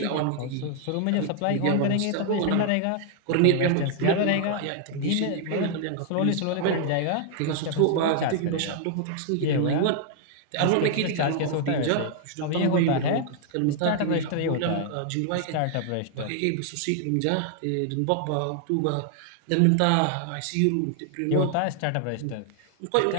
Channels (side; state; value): both; different; correlation 0.00